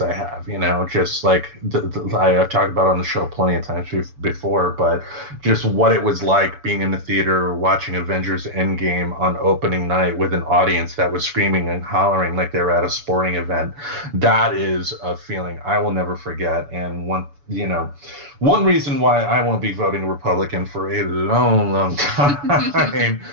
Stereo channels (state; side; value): late; left; 7.0 ms